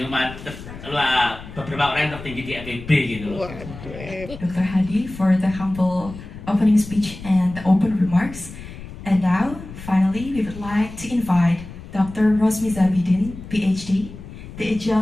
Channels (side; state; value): left; noise; rumble, 14 dB below the sound